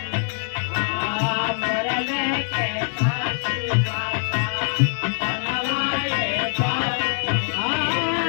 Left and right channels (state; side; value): silent; right; 57 dB below the other